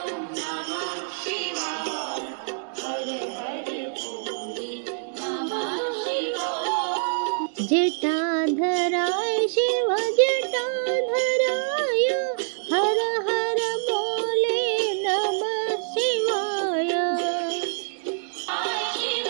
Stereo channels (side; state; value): left; silent; digital silence